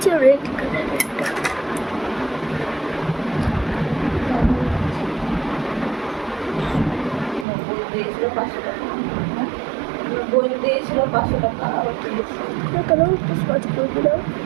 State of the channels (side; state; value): left; drops out; at 7.5 s